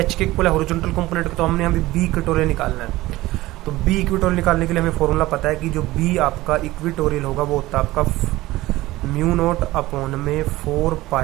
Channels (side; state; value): left; quieter; 17.9 dB